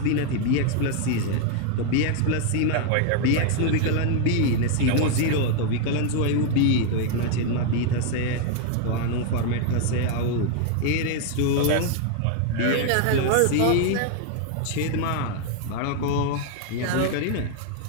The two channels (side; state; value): both; different; correlation 0.00